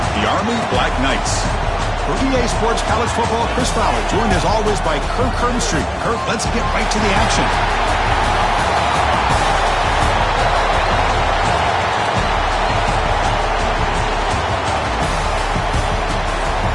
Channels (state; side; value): identical; both; correlation 1.00